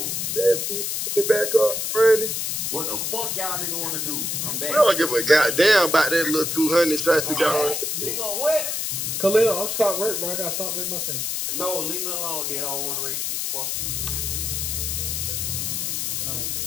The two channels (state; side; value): noise; left; hiss, 1 dB below the sound